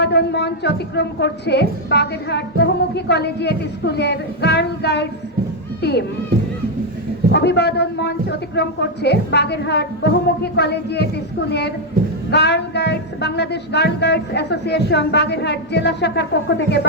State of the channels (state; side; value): normal; both; correlation 0.01